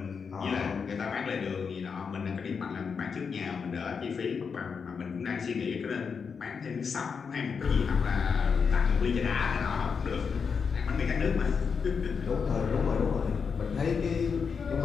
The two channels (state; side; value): quieter; right; 5.9 dB